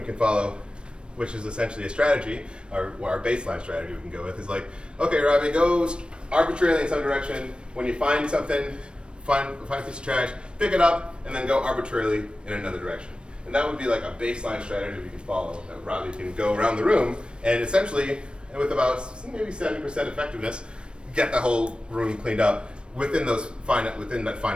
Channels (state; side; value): late; left; 0.056 ms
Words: can follow, which is essentially a strategy, or our baseline strategy we can go with, is like, okay, Robbie, go arbitrarily in some direction. When you find something, find a piece of trash, pick it up, and then go arbitrarily in another direction. And that would be like a baseline strategy we can follow, that Robbie can go around the room and essentially, with about maybe 70% effectiveness, get the whole room cleaned up within that